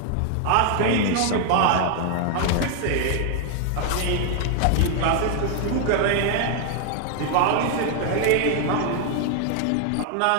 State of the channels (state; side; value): different; both; correlation 0.00